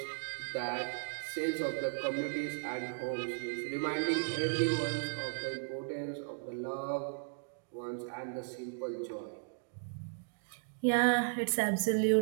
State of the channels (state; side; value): silent; left; digital silence